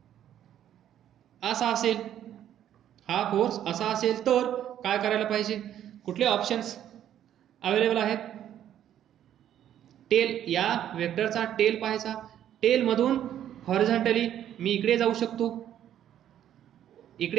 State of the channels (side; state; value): left; quieter; 10.8 dB